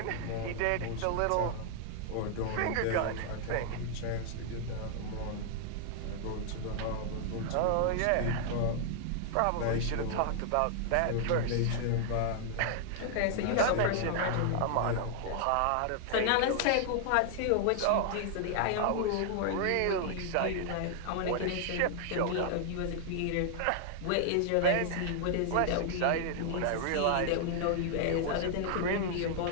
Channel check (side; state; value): both; different; correlation -0.01